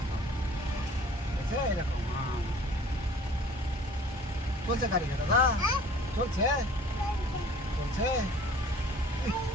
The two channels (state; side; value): normal; both; correlation 0.50